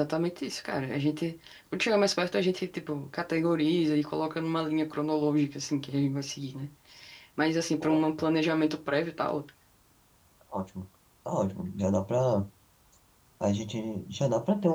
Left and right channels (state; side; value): identical; both; correlation 1.00